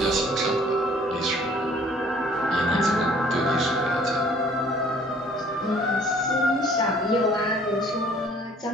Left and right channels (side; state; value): both; normal; correlation 0.56